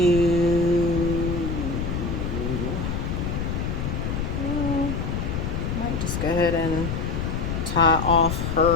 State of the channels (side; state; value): left; noise; rumble, 2 dB below the sound